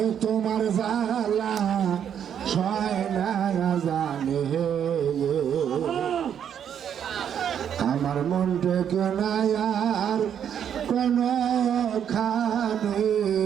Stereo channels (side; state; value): left; quieter; 8.8 dB